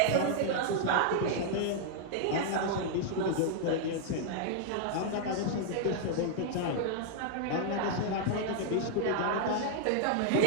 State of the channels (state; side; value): different; both; correlation -0.01